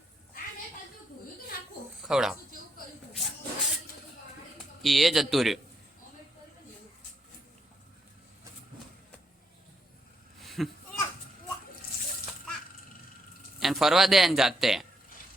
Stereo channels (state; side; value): normal; both; correlation 0.78